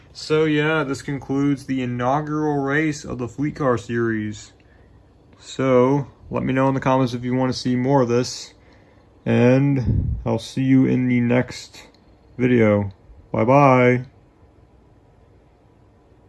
So yeah, this concludes the inaugural race of the Fleet Car Series. So let me know in the comments if you want to see more of this. And I'll see you in the next video. Bye-bye.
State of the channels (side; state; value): both; identical; correlation 1.00